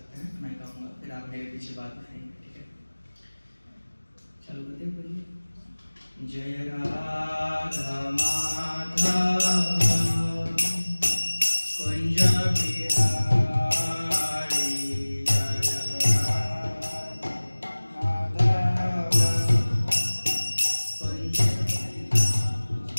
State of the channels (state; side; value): inverted; both; correlation -1.00